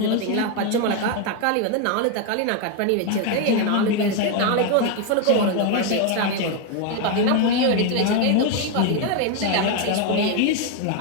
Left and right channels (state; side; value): different; both; correlation 0.01